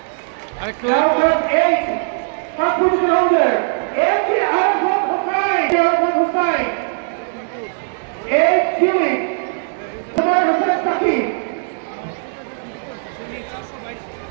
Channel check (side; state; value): left; silent; digital silence